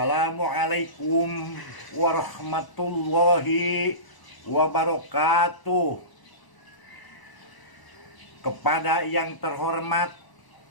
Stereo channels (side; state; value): right; late; 1.0 ms